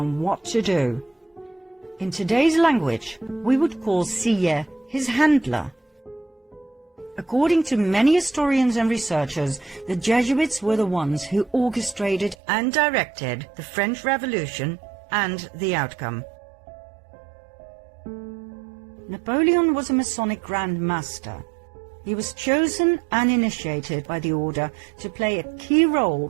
what to do. In today's language, we would call Sillet his handler. According to many historians and researchers, the Jesuits were the ones who orchestrated and directed the French Revolution and the outcome. Napoleon was a Masonic Grand Master. He was chosen and initiated by the order to play a key role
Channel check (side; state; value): left; drops out; at 12.4 s